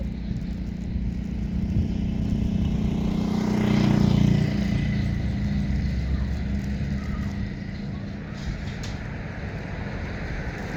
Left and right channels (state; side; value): identical; both; correlation 1.00